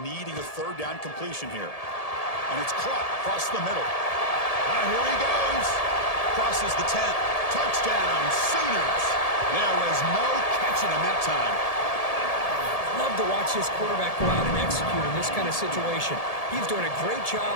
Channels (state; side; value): late; right; 1.7 ms